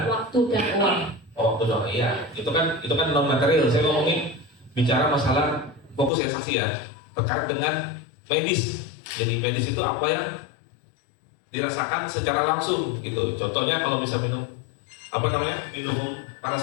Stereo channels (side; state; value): right; drops out; at 6.1 s